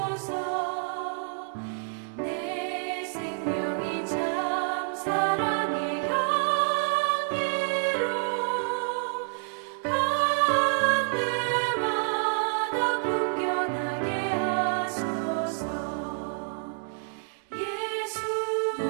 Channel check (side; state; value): left; silent; 59 dB below the other